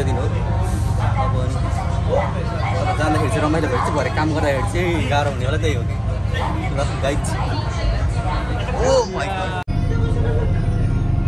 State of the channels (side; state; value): both; identical; correlation 1.00